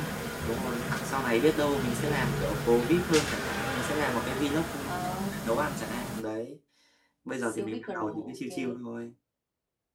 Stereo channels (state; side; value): identical; both; correlation 1.00